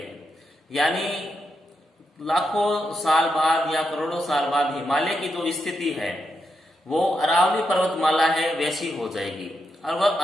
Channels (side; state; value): both; normal; correlation 0.84